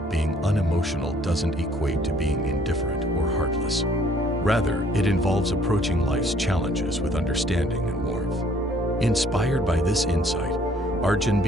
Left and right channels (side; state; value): both; normal; correlation 0.60